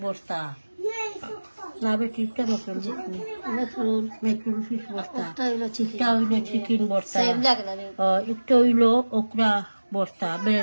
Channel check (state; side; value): inverted; both; correlation -1.00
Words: বর্তা না বেটিটা মেকুল ফিশ বর্তা এটা হইল চিকেন বর্তা এটা হইল ওকরা বর্তা